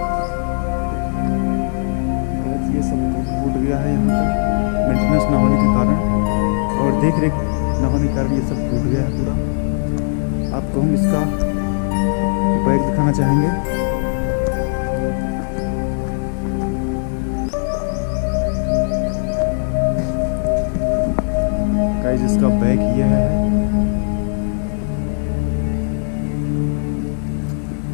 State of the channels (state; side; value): silent; right; 67 dB below the other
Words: ये सब टूट गया है यहाँ पर मेंटेनेंस ना होने के कारण, और देख रेख ना होने के कारण ये सब टूट गया है पूरा। आपको हम इसका बैग दिखाना चाहेंगे। जिसका बैग ये है।